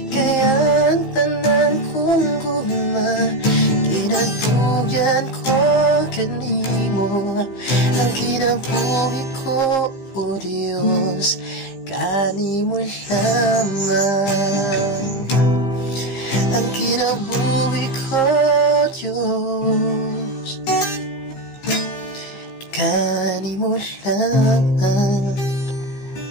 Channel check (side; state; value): right; late; 15 ms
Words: Kaya ang tanan kong gugma, ginatugyan ko kanimo. Ang kinabuhi ko, o Diyos, kanimo lamang. Ang kinabuhi ko, Diyos, kanimo lamang.